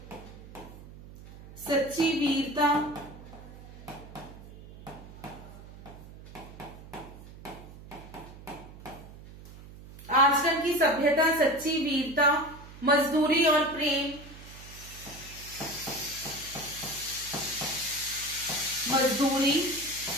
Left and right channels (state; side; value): noise; right; hum, 17 dB below the sound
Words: सच्ची वीरता, आश्रम की सभ्यता, सच्ची वीरता, मजदूरी और प्रेम, मजदूरी